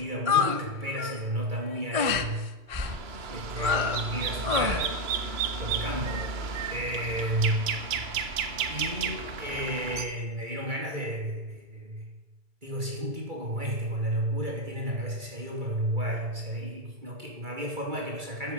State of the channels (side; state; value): left; late; 2.3 ms